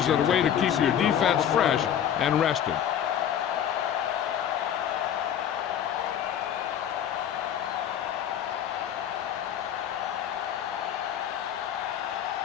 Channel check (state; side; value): quieter; right; 9.6 dB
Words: are the way to keep your defense fresh and rested.